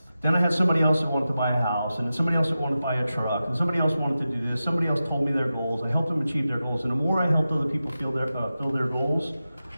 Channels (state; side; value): inverted; both; correlation -0.92